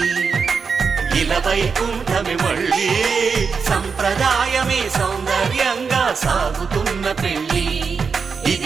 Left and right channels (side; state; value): left; quieter; 5.5 dB